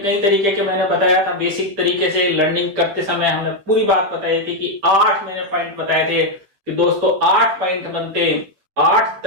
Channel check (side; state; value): left; late; 9.9 ms